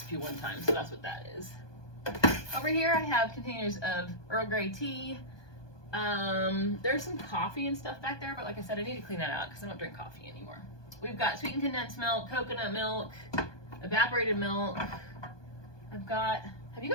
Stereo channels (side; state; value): right; late; 1.2 ms